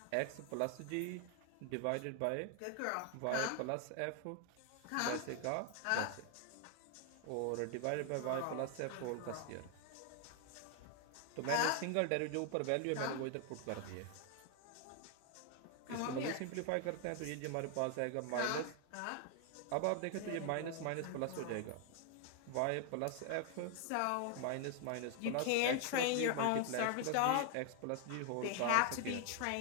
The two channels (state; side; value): different; both; correlation 0.00